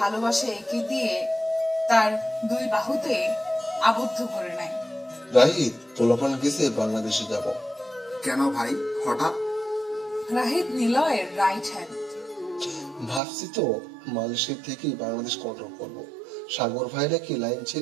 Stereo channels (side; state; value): left; drops out; at 13.2 s